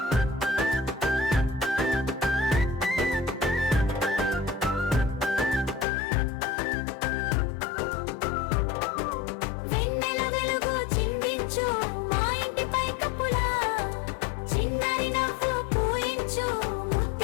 వెన్నెల వెలుగు చిందించు మా ఇంటి పై కప్పులా, చిన్నారి నవ్వు పూయించు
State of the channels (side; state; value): right; drops out; at 5.9 s